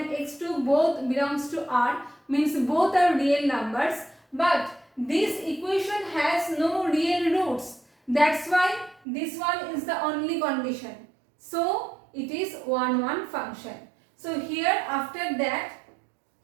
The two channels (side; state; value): left; drops out; at 9.0 s